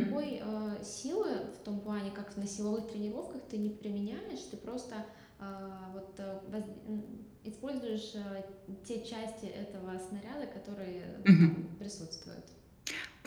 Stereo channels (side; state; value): both; identical; correlation 1.00